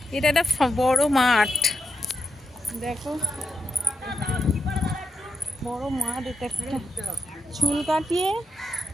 এটা একটা বড় মাঠ, দেখো বড় মাঠ। এটা একটা চুল কাটিয়ে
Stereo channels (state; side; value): normal; both; correlation 0.87